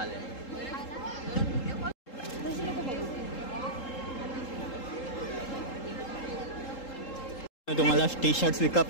तुम्हाला टी शर्ट्स विकत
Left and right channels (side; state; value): right; late; 3.8 ms